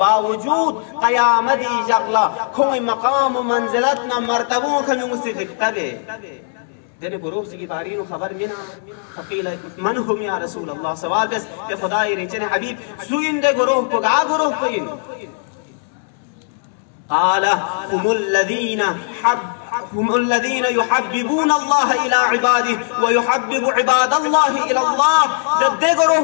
क़यामती जगला कोई मकाम व मंजिलत ना मर्तबों के मुझसे दिखतबे दिन गुरोह ची की बारी नु खबर मिना फकील मन हुम या रसूल अल्लाह सवाल बस के खुदाई रिचने हबीब सुइन दे गुरोह को गा गुरोह को इन आला هم الذين يحببون الله إلى عباده ويحبب عباد الله إلى الله दे गरोह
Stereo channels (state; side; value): silent; right; 67 dB below the other